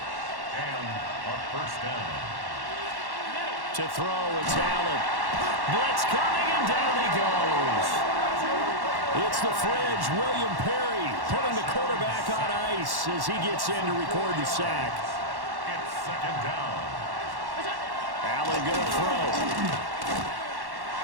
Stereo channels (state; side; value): late; left; 1.1 ms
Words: And a first down. To throw, it's Allen. Blitz coming, and down he goes. It's the fridge, William Perry, putting the quarterback on ice as he gets in to record the sack. It's second down. Allen gonna throw.